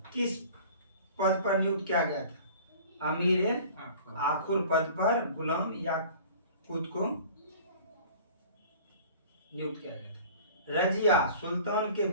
किस पद पर नियुक्त किया गया था, अमीर आखुर पद पर गुलाम याकूत को नियुक्त किया गया था। रजिया सुल्तान के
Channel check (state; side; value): inverted; both; correlation -0.45